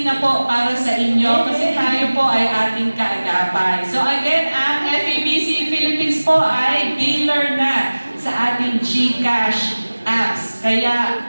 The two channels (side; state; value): both; inverted; correlation -1.00